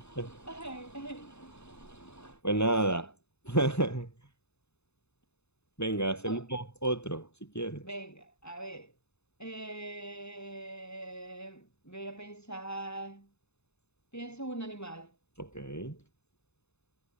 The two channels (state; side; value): late; right; 0.80 ms